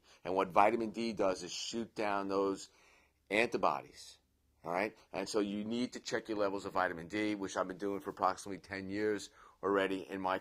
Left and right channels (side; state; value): both; identical; correlation 1.00